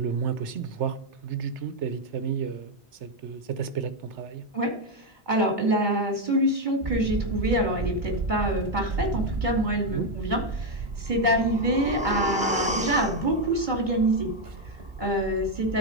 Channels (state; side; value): normal; both; correlation 0.04